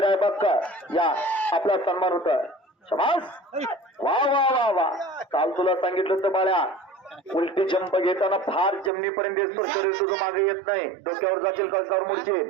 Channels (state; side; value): drops out; left; at 8.9 s